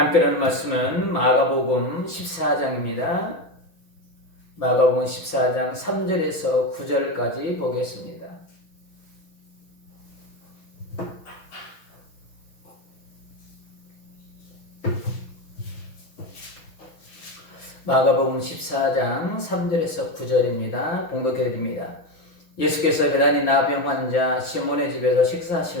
나눌 말씀은 마가복음 14장입니다. 마가복음 14장 3절에서 9절까지 보겠습니다. 마가복음 14장 3절에서 9절입니다. 봉독해드립니다. 예수께서 베다니 나병 환자 시몬의 집에서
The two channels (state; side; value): late; right; 6.2 ms